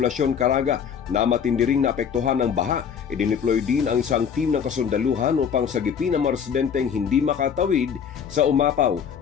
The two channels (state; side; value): quieter; right; 7.4 dB